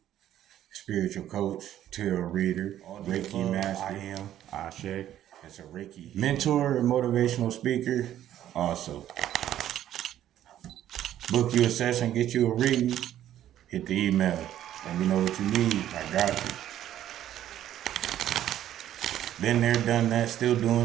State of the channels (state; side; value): quieter; left; 11.8 dB